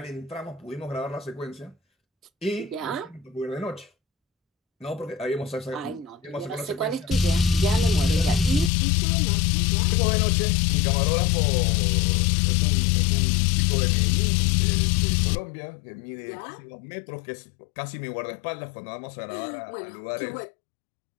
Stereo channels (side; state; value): right; drops out; at 8.7 s